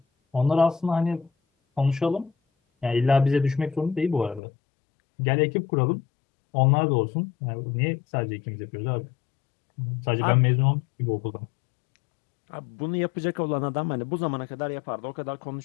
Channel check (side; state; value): right; drops out; at 4.4 s